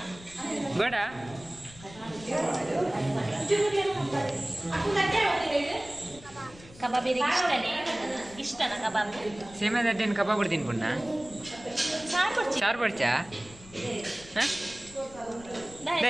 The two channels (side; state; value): left; noise; rumble, 20 dB below the sound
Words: ಬೇಡ ಕಬಾಬ್ ಇಷ್ಟನಾ ಕಬಾಬ್ ಸೇಮೆ ದಡ್ಡೇನು ಕಬಾಬ್ ಬಿಡ್ತೀನಿ ಪುಣ್ಣ ಸಾರು ಬಡ್ಚಾ